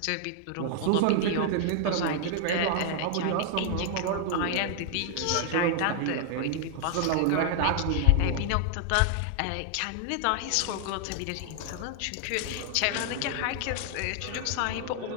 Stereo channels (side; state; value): both; different; correlation 0.00